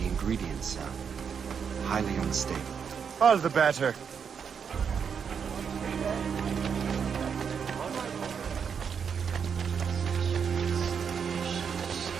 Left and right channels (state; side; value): quieter; left; 6.8 dB